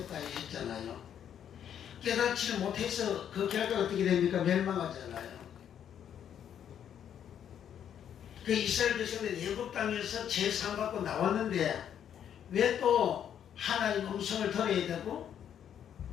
했잖아요. 깨닫지를 못해서 그 결과가 어떻게 됩니까? 멸망하잖아요. 그 이스라엘 백성들이 애굽 땅에서 제사받고 나왔는데 왜 또 하나님 음성을 들어야 되고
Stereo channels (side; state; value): right; quieter; 9.2 dB